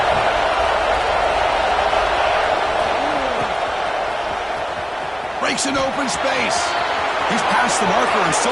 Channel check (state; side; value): identical; both; correlation 1.00